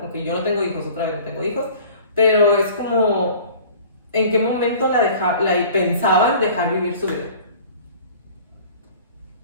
Aunque yo no tengo hijos, otra vez no tengo hijos, pero es como, ¿en qué momento la pensaban dejar vivir su vida?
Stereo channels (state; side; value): inverted; both; correlation -0.46